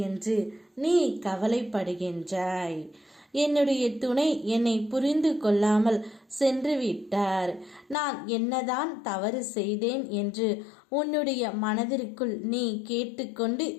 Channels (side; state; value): right; drops out; at 8.0 s